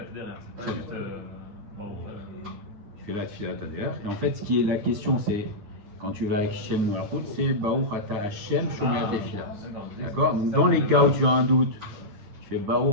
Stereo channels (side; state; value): left; late; 9.9 ms